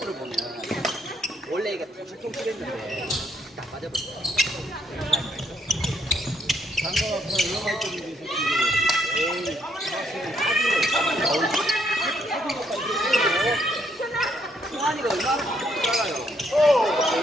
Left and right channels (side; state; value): both; normal; correlation 0.72